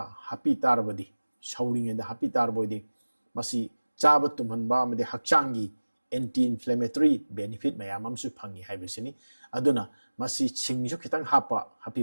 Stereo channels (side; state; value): both; inverted; correlation -1.00